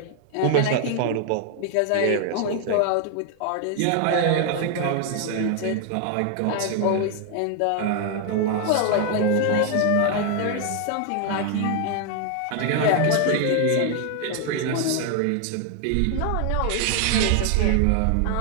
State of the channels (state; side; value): different; both; correlation 0.00